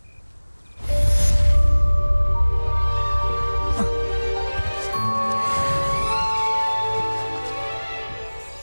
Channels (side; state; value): both; inverted; correlation -1.00